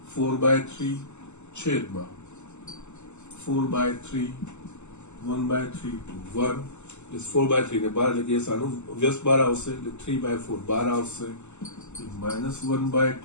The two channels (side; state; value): right; late; 0.83 ms